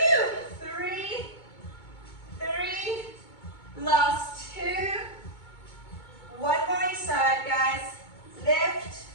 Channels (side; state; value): right; late; 2.2 ms